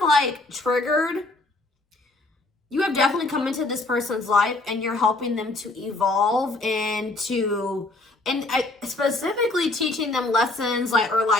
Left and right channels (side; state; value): right; quieter; 3.0 dB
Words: like triggered, you have definitely come into this person's life and you're helping them to evolve and specifically teaching them lessons, like, or